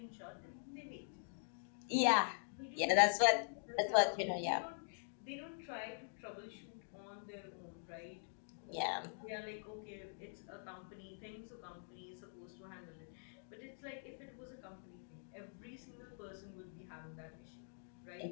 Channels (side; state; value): right; silent; digital silence